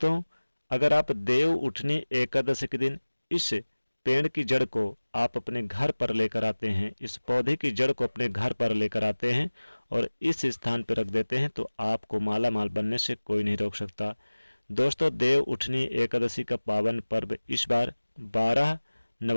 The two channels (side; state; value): both; inverted; correlation -1.00